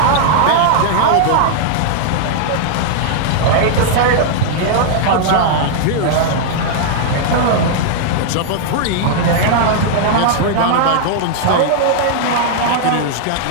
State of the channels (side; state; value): both; different; correlation -0.01